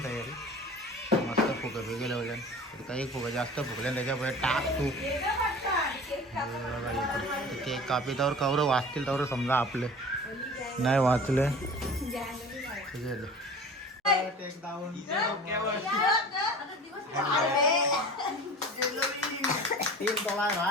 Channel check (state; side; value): normal; both; correlation 0.39